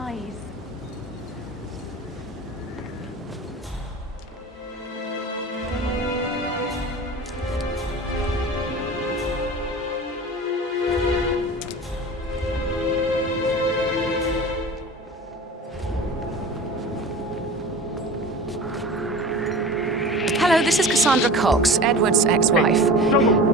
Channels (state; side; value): normal; both; correlation 0.36